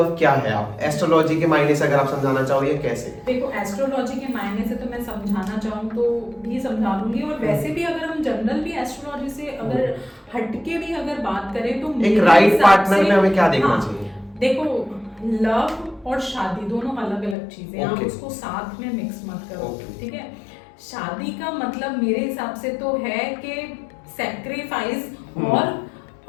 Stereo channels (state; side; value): drops out; right; at 17.4 s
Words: क्या है, आप एस्ट्रोलॉजी के मायने से अगर आप समझाना चाहो, ये कैसे? देखो एस्ट्रोलॉजी के मायने से तो मैं समझाना चाहूँ तो भी समझा दूंगी, और वैसे भी अगर हम जनरल भी एस्ट्रोलॉजी से अगर हटके भी अगर बात करें, तो एक राइट पार्टनर में हमें क्या देखना चाहिए? देखो लव और शादी दोनों अलग अलग चीजें हैं, आप उसको साथ में मिक्स मत करो, ठीक है। शादी का मतलब मेरे हिसाब से तो है कि सैक्रिफाइस और